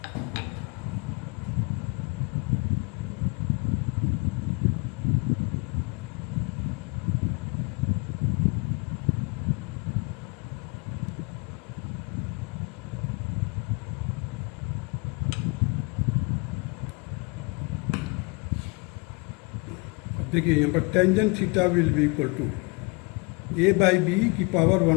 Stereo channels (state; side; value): quieter; right; 29.3 dB